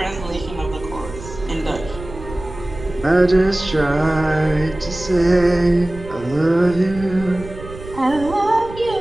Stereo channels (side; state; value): right; noise; rumble, 14 dB below the sound